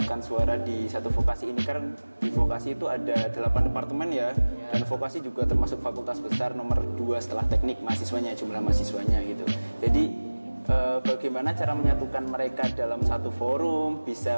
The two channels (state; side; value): inverted; both; correlation -1.00